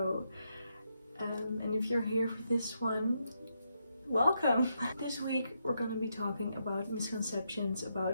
And if you're here for this one, welcome! This week we're going to be talking about misconceptions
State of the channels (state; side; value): inverted; both; correlation -0.81